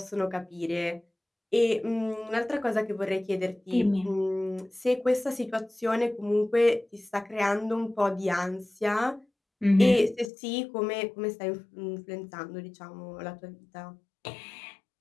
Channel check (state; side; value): drops out; right; at 10.3 s